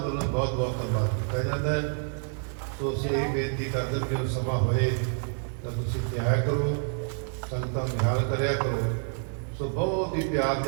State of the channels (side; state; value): left; silent; 55 dB below the other